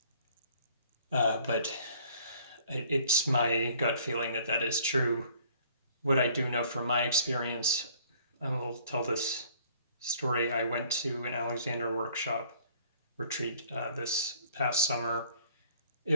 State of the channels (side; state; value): both; inverted; correlation -0.57